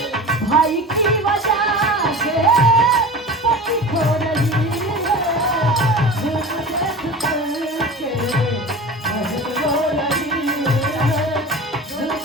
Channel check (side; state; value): both; normal; correlation 0.34